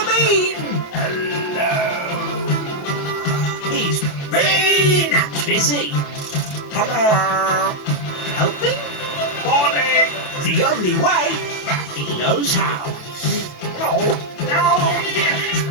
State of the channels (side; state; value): right; late; 28 ms